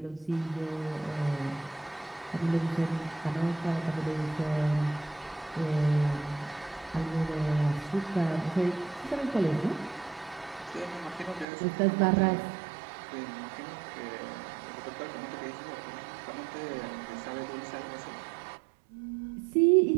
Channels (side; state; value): left; drops out; at 11.5 s